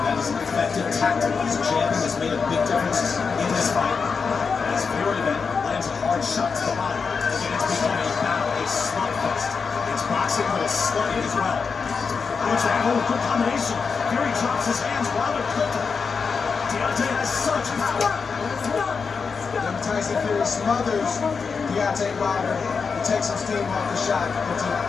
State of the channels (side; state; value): right; quieter; 5.4 dB